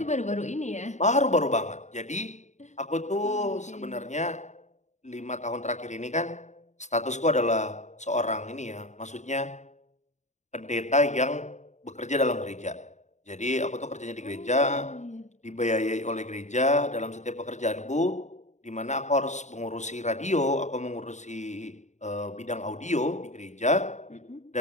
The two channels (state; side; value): late; right; 0.34 ms